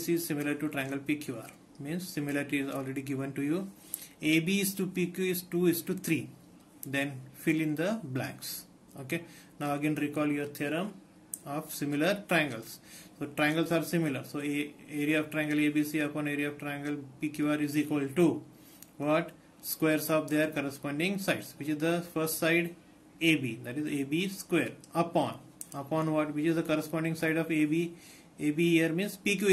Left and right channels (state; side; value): identical; both; correlation 1.00